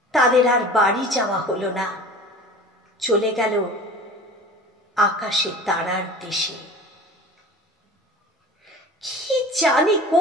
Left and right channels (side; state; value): both; normal; correlation 0.39